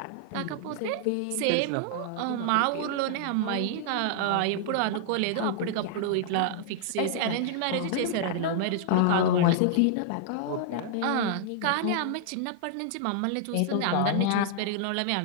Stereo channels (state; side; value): different; both; correlation -0.01